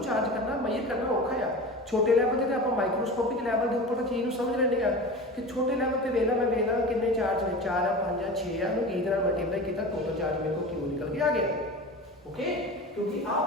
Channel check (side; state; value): both; normal; correlation 0.32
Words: ਚਾਰਜ ਕਰਨਾ ਮੇਜਰ ਕਰਨਾ ਔਖਾ ਆ। ਛੋਟੇ ਲੈਵਲ ਤੇ ਆਪਾਂ ਮਾਈਕਰੋਸਕੋਪਿਕ ਲੈਵਲ ਦੇ ਉੱਪਰ ਤਾਂ ਚੀਜ਼ ਨੂੰ ਸਮਝ ਲੈਂਦੇ ਆ ਕਿ ਛੋਟੇ ਲੈਵਲ ਤੇ ਵੇਖਣਾ ਮੈਂ ਵੇਖਣਾ ਕਿੰਨੇ ਚਾਰਜ ਨੇ 4 ਆ 5 ਆ 6 ਆ ਨੂੰ ਕੀ ਨਾਲ ਮਲਟੀਪਲਾਈ ਕੀਤਾ ਟੋਟਲ ਚਾਰਜ ਮੇਰੇ ਕੋਲ ਕਿਉਂ ਨਿਕਲ ਕੇ ਆ ਗਿਆ। ਓਕੇ, ਕਿਉਂਕਿ ਆਹ